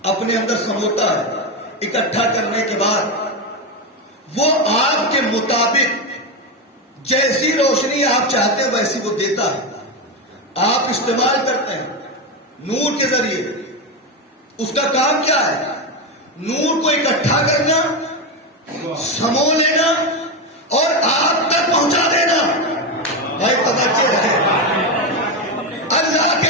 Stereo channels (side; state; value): both; normal; correlation 0.12